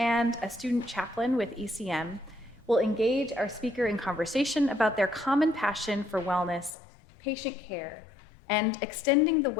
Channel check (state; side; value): drops out; right; at 6.8 s